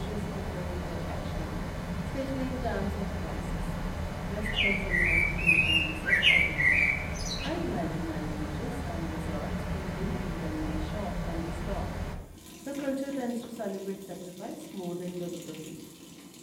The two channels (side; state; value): both; identical; correlation 1.00